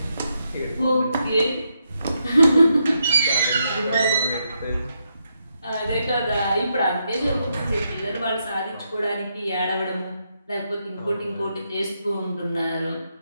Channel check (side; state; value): both; inverted; correlation -0.81